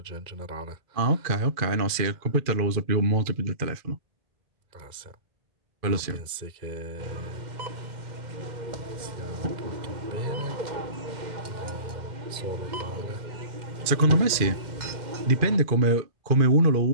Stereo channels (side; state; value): left; late; 2.4 ms